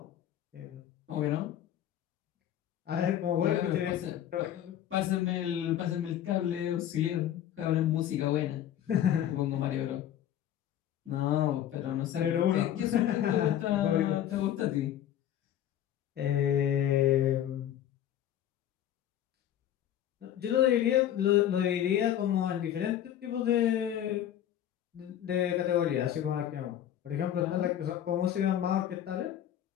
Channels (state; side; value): quieter; right; 11.0 dB